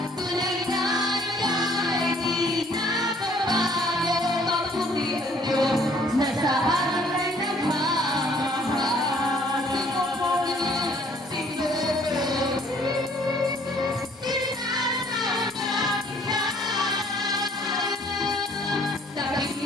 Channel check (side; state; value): both; normal; correlation 0.60